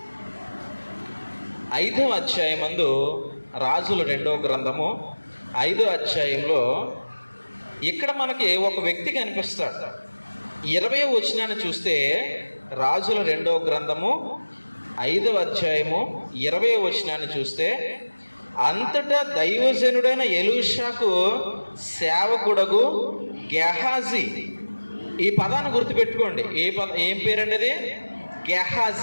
5వ అధ్యాయమందు, రాజులు 2వ గ్రంథము 5వ అధ్యాయంలో ఇక్కడ మనకి ఒక వ్యక్తి కనిపిస్తాడు. 20వ వచనాన్ని చూస్తే, రాజుల 2వ గ్రంథము 5వ అధ్యాయము 20వ వచనాన్ని చూస్తే, అంతటా దైవజనుడైన ఎలీషాకు సేవకుడగు గెహాజీ. ఈ పదాన్ని గుర్తుపెట్టుకోండి. ఏం పేరండి అది?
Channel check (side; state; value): both; inverted; correlation -1.00